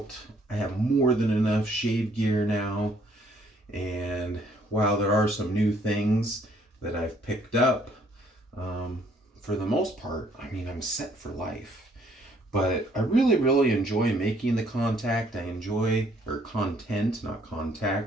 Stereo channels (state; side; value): normal; both; correlation 0.65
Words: I have more than enough shave gear now, and while there are some new things that I've picked up, for the most part, I mean, I'm set for life. But I really enjoy making the content, not